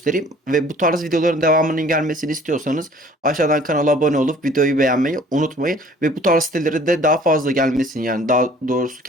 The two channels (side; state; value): both; normal; correlation 0.52